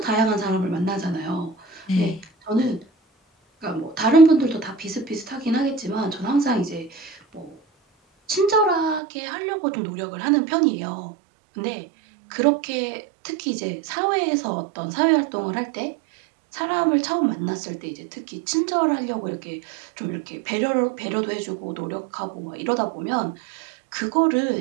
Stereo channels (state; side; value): drops out; left; at 9.0 s